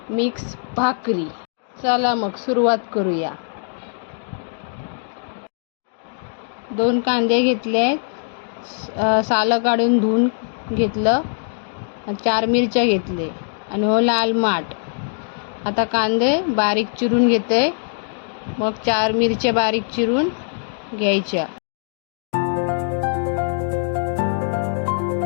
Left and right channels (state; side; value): silent; right; digital silence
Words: मिक्स भाकरी। चला मग सुरुवात करूया। 2 कांदे घेतले, सालं काढून धुवून घेतलं, 4 मिरच्या घेतले आणि हो लाल माठ। आता कांदे बारीक चिरून घेते, मग 4 मिरच्या बारीक चिरून घ्यायच्या।